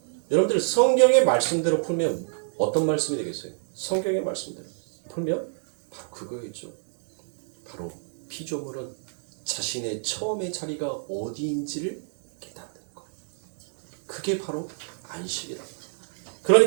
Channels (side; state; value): left; silent; digital silence